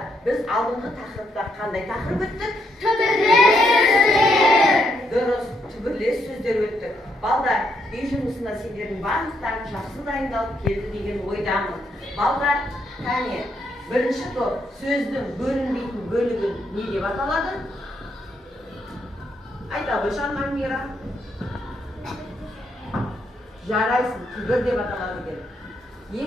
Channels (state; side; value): normal; both; correlation 0.76